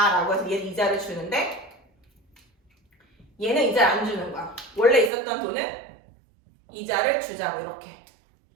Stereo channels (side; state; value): left; drops out; at 5.1 s